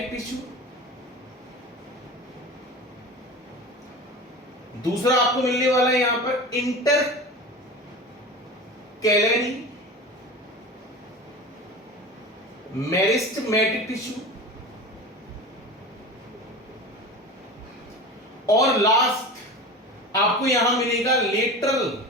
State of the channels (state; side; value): normal; both; correlation 0.32